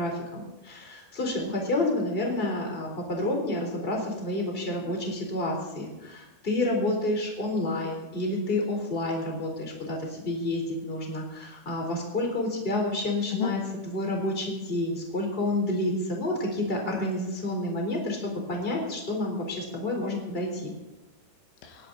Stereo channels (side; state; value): both; normal; correlation 0.07